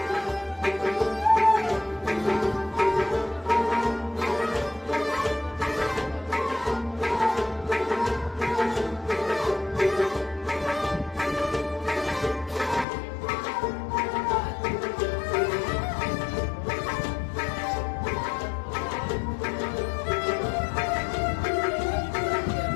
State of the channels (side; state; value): right; drops out; at 12.9 s